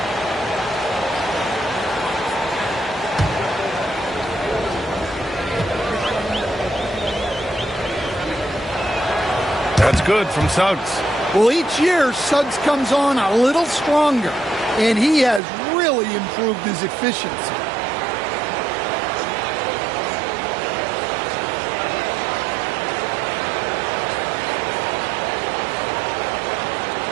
That's good from Suggs. Well, each year, Suggs comes on a little stronger. and he has really improved his efficiency.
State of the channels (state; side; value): drops out; left; at 15.4 s